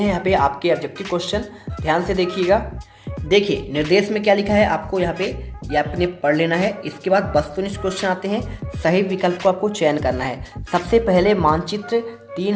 यहाँ पे आपके ऑब्जेक्टिव क्वेश्चन, ध्यान से देखिएगा। देखिए निर्देश में क्या लिखा है आपको यहाँ पे ये आपने पढ़ लेना है। इसके बाद वस्तुनिष्ठ क्वेश्चन आते हैं। सही विकल्प को आपको चयन करना है। सबसे पहले मानचित्र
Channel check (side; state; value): both; identical; correlation 1.00